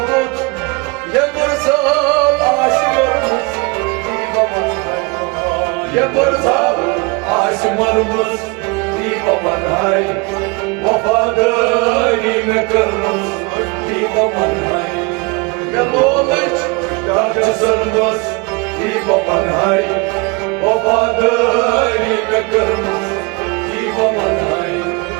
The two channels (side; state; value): left; quieter; 28.0 dB